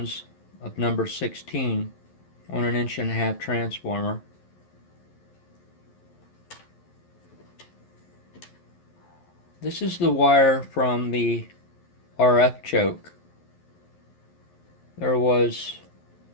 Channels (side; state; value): right; late; 11 ms